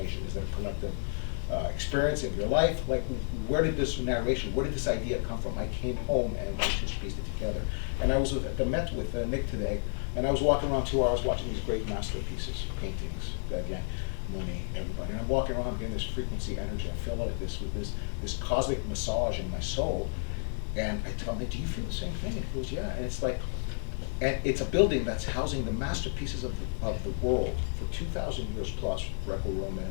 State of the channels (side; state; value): right; silent; 57 dB below the other